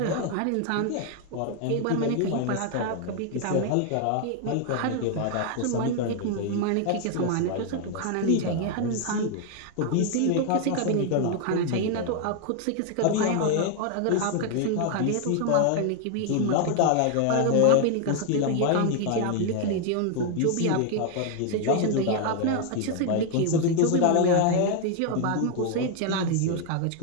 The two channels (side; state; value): both; different; correlation 0.00